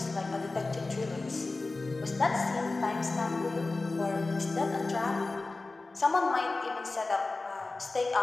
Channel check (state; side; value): quieter; right; 3.4 dB